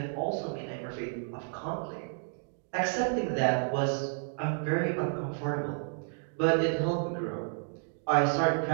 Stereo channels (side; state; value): left; silent; digital silence